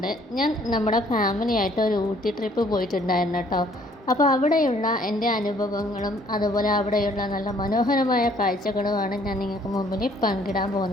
നമ്മുടെ ഫാമിലിയായിട്ട് ഒരു ഊട്ടി ട്രിപ്പ് പോയിട്ടുണ്ടായിരുന്നു കേട്ടോ. അപ്പോൾ അവിടെയുള്ള എൻ്റെ അനുഭവങ്ങളും അതുപോലെ അവിടെയുള്ള നല്ല മനോഹരമായ കാഴ്ചകളുമാണ് ഞാൻ നിങ്ങൾക്ക് മുമ്പിൽ പങ്കിടാൻ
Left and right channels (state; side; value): normal; both; correlation 0.61